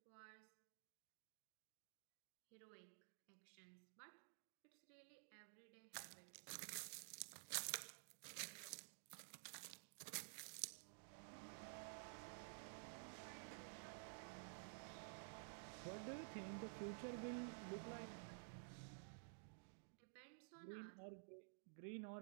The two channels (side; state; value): left; silent; digital silence